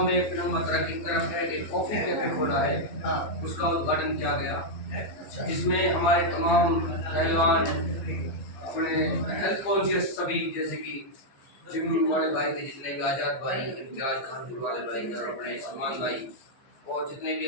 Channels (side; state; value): right; late; 15 ms